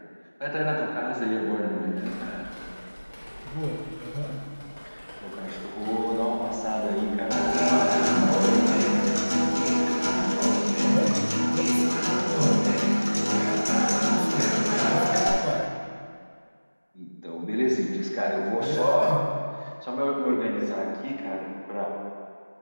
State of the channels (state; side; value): inverted; both; correlation -1.00